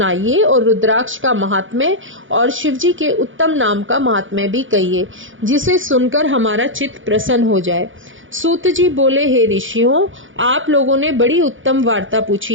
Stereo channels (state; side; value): late; left; 0.57 ms